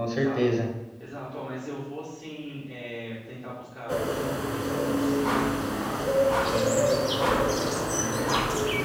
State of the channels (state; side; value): identical; both; correlation 1.00